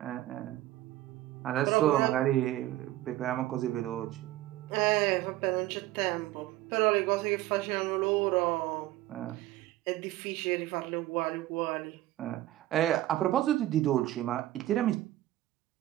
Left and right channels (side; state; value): left; quieter; 15.3 dB